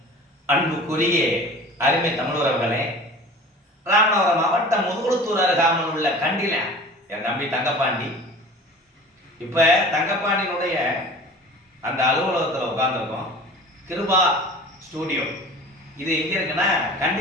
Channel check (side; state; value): both; normal; correlation 0.40